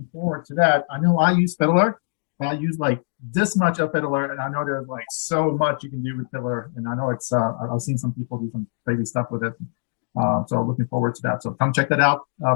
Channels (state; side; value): silent; right; digital silence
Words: forward to that. I know I use fiddler. I use like this much of fiddler, and I know there's like so much you can do with fiddler. And I know it's I've seen some people do some crazy stuff with it. So looking forward to that. So come check that out.